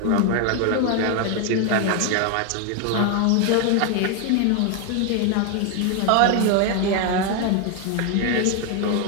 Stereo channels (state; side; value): different; both; correlation 0.01